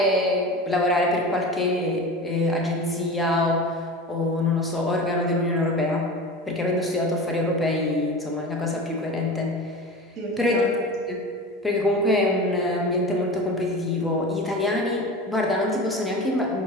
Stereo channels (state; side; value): normal; both; correlation 0.32